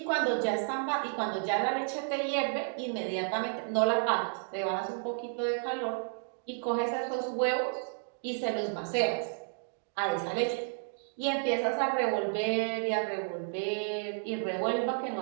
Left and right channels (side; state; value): left; silent; digital silence